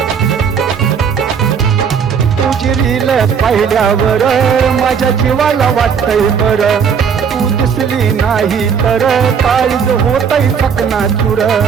तुझी रील पाहिल्यावर माझ्या जीवाला वाटतंय बरं, तू दिसली नाही तर काळीज होतय चकनाचूर.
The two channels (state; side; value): quieter; left; 6.8 dB